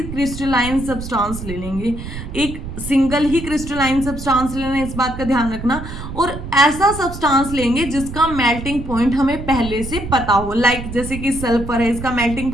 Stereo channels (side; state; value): right; noise; rumble, 9 dB below the sound